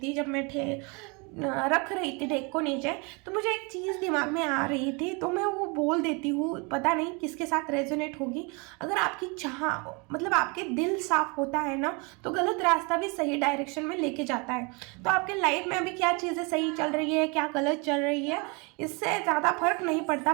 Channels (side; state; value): left; quieter; 30.7 dB